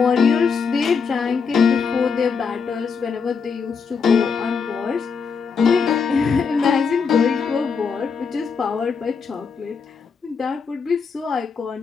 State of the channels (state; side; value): quieter; right; 5.7 dB